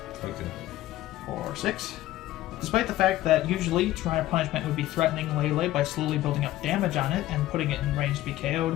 Okay. For 6. Despite the fact that usually Shrine of Punishment would be threatening Lele by slowly building up damage on it and putting it in range to be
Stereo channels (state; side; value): quieter; right; 15.3 dB